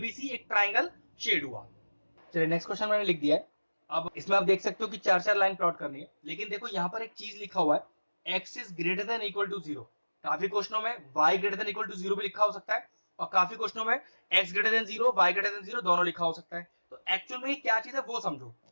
एक ट्राइंगल शेड हुआ। चलिए नेक्स्ट क्वेश्चन मैंने लिख दिया है। अब इसमें आप देख सकते हो कि 4-4 लाइन प्लॉट करनी है, लेकिन देखो यहाँ पर एक चीज लिखा हुआ है, x is greater than equal to 0, काफी क्वेश्चनों में y greater than equal to 0 भी लिखा हो सकता है, और काफी क्वेश्चनों में x greater then 0 y greater then 0 दोनों लिखा हो सकता है। तो एक्चुअल में क्या चीज है वो समझो,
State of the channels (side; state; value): both; inverted; correlation -1.00